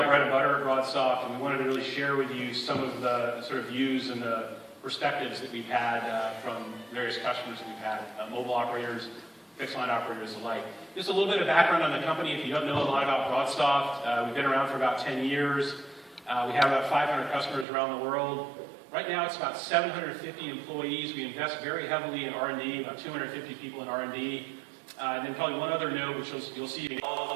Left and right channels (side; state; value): left; drops out; at 17.7 s